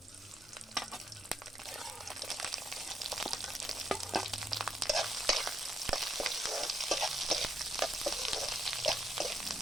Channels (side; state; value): both; normal; correlation 0.76